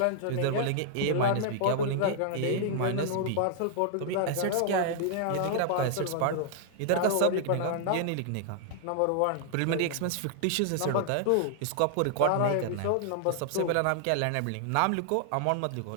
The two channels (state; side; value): different; both; correlation -0.01